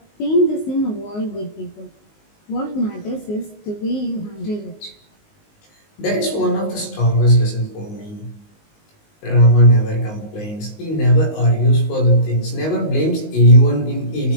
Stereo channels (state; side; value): late; right; 19 ms